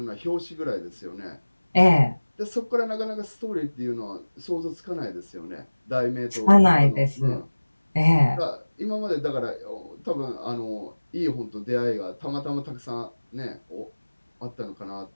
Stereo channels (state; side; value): inverted; both; correlation -1.00